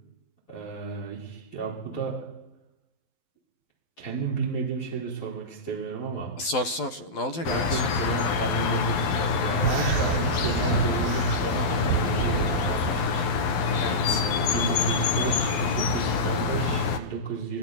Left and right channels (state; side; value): late; right; 12 ms